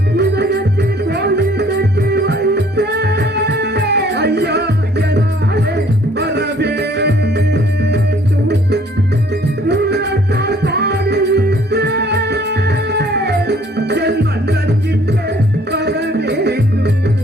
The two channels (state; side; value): normal; both; correlation 0.59